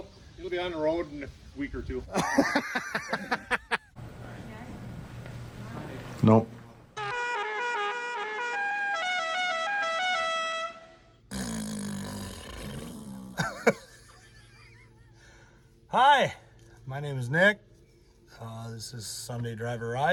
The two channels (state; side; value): identical; both; correlation 1.00